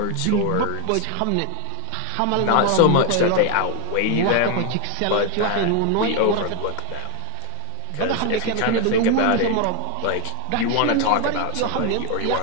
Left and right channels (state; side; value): different; both; correlation 0.01